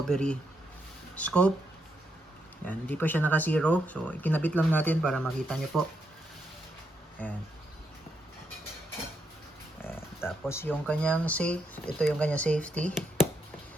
scope. Ayan. Hindi pa siya naka-zero. So ikinabit lang natin para makita nyo po. Ayan. Ayan. Tapos yung kanyang safe. Ito yung kanyang safety.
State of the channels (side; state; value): both; normal; correlation 0.80